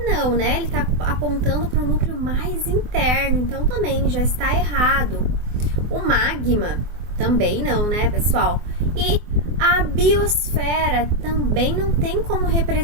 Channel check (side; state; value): left; late; 24 ms